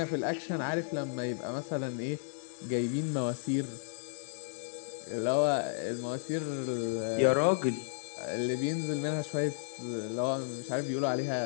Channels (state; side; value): silent; right; 56 dB below the other